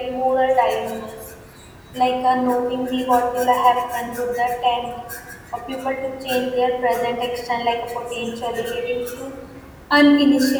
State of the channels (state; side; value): identical; both; correlation 1.00